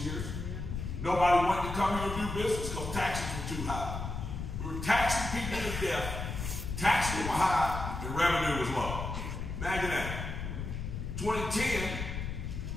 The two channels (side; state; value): left; noise; rumble, 5 dB below the sound